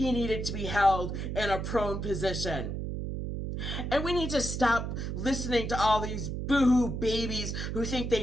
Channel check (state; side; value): noise; right; hum, 4 dB below the sound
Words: needed to be held in a prone position. And we need to stop listening to all these boohoo babies who think